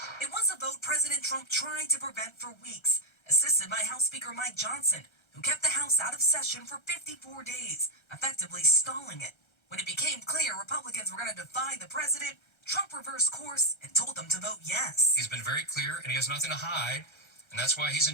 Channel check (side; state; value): right; late; 1.3 ms